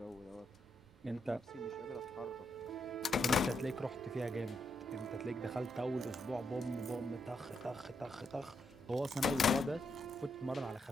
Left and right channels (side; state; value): both; normal; correlation 0.80